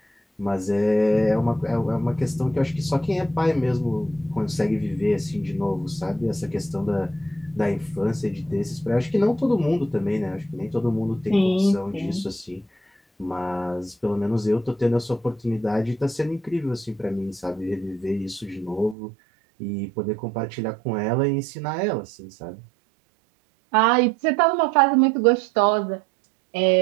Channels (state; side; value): drops out; left; at 18.9 s